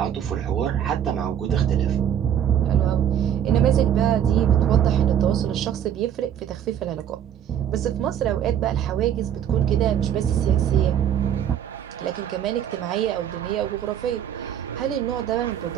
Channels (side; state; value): left; quieter; 9.6 dB